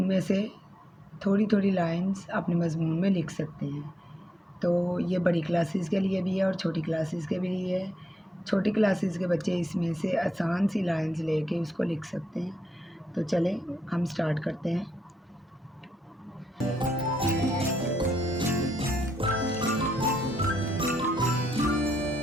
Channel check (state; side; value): normal; both; correlation 0.80